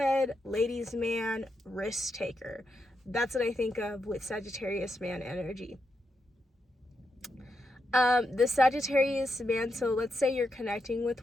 ladies' man, risk taker. That's what I think of with Sagittarius man energy. The Sagittarius man, so let's say you're connecting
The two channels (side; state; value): both; normal; correlation 0.84